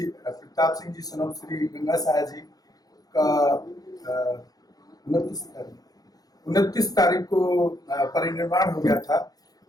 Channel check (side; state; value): right; late; 0.18 ms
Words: प्रताप सिंह जी सनम श्री गंगा साहा जी का 29 तारीख को परिनिर्वाण हो गया था,